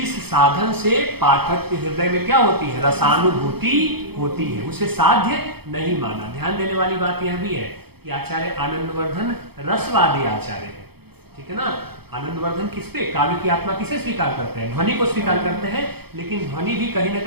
साधन से पाठक के हृदय में क्या होती है? रसानुभूति होती है, उसे साध्य नहीं माना। ध्यान देने वाली बात यह भी है कि आचार्य आनंदवर्धन रसवादी आचार्य है, ठीक है ना। आनंदवर्धन किस पे? काव्य की आत्मा किसे स्वीकार करते हैं? ध्वनि को स्वीकार करते हैं, लेकिन ध्वनि भी कहीं ना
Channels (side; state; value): left; late; 0.97 ms